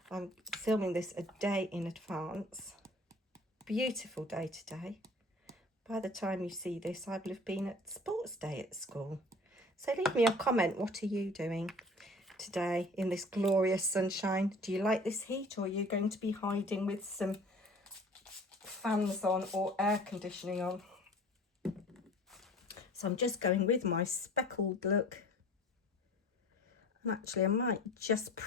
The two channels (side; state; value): both; normal; correlation 0.46